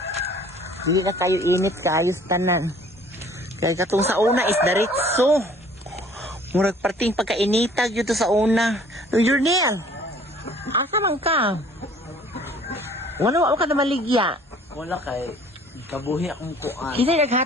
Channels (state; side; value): normal; both; correlation 0.54